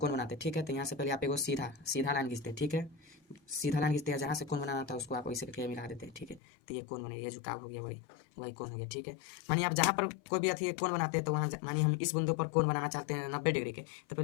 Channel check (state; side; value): drops out; right; at 6.4 s